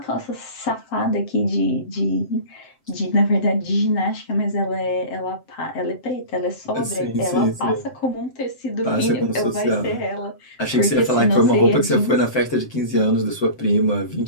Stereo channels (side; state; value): right; late; 7.7 ms